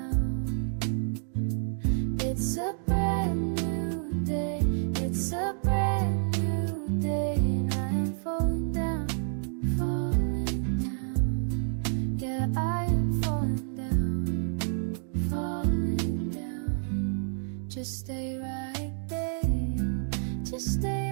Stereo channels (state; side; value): silent; left; 59 dB below the other